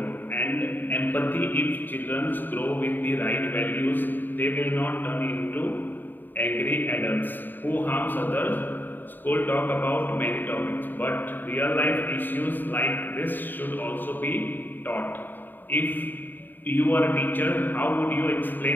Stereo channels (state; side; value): late; right; 0.091 ms